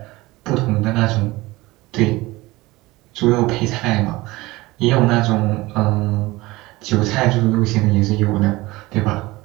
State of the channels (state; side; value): quieter; left; 20.3 dB